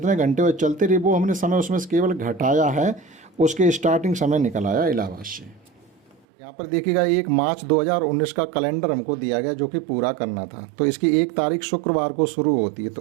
घंटे वो चलते रही, वो हमने समय उसमें से केवल घटाया है, उसके स्टार्टिंग समय निकल आया इलाहाबाद से। यहाँ पर देखिएगा 1 मार्च 2019 का कैलेंडर हमको दिया गया, जो कि पूरा करना था। तो इसकी 1 तारीख शुक्रवार को शुरू होती है।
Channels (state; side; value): drops out; left; at 6.2 s